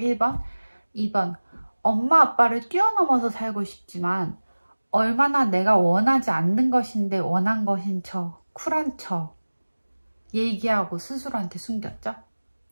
2번 엄마 아빠를 뛰어넘어서 살고 싶지만 얼마나 내가 원하지 않는 것인데 원한 것인 척 쿨한 척 얘기하고 스스로한테 숨겼죠.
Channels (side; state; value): both; inverted; correlation -1.00